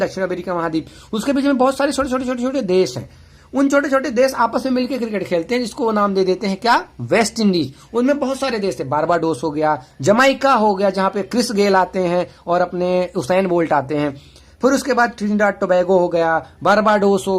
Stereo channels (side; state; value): both; identical; correlation 1.00